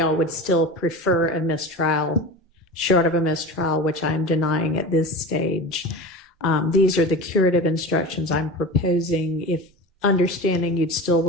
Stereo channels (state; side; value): normal; both; correlation 0.30